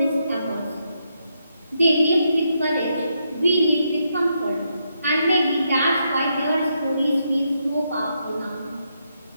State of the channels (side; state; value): both; inverted; correlation -0.80